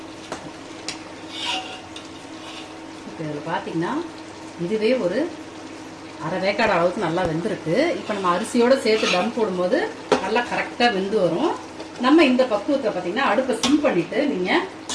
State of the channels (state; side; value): identical; both; correlation 1.00